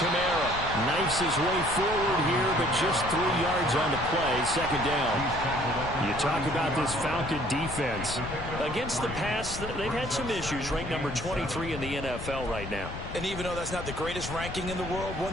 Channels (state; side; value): noise; left; rumble, 9 dB below the sound